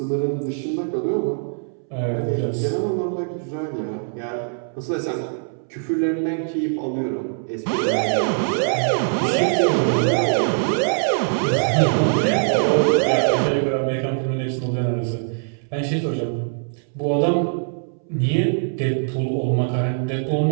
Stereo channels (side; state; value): left; silent; 64 dB below the other